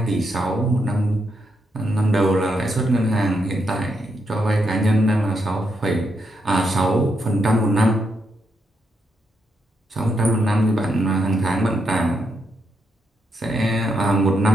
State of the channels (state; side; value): normal; both; correlation 0.80